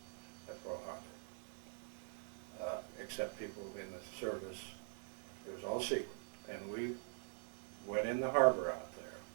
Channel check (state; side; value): silent; left; digital silence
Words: at Pearl Harbor, except people in the service. It was all secret. And we went in the harbor out there,